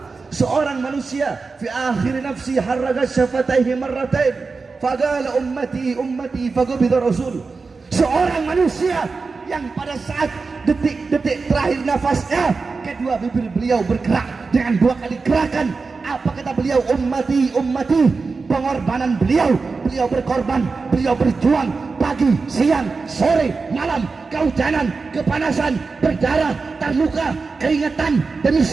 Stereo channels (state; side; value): quieter; left; 4.4 dB